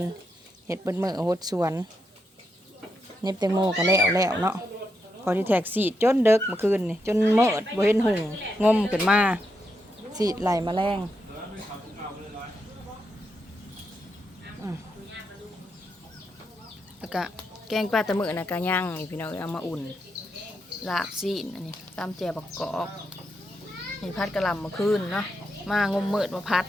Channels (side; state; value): both; normal; correlation 0.83